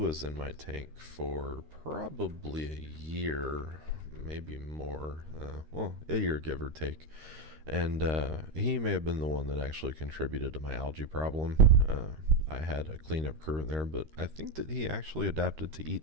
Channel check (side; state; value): left; late; 13 ms